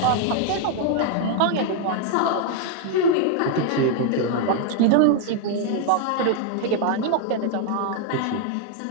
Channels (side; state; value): both; different; correlation 0.00